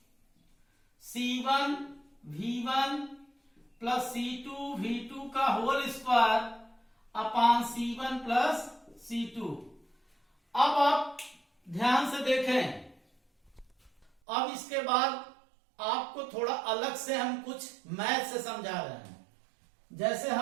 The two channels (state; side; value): drops out; left; at 14.1 s